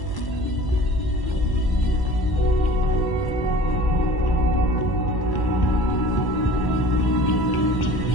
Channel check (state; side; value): late; right; 1.0 ms